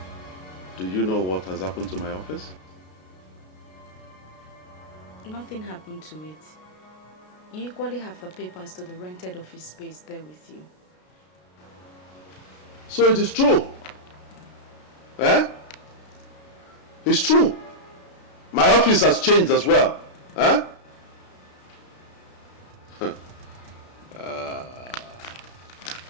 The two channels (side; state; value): right; late; 33 ms